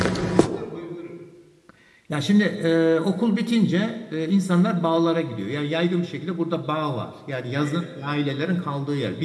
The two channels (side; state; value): both; identical; correlation 1.00